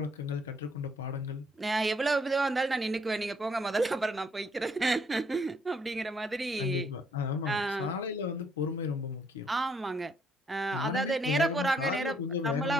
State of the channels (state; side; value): normal; both; correlation 0.68